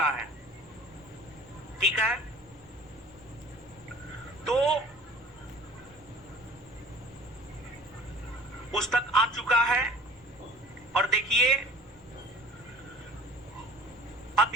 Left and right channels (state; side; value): normal; both; correlation 0.47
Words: है। ठीक है, तो पुस्तक आ चुका है और देखिए